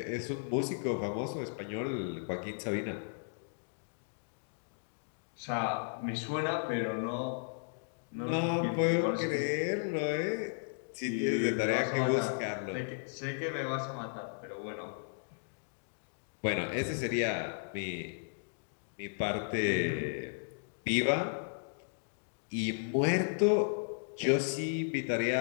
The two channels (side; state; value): right; silent; digital silence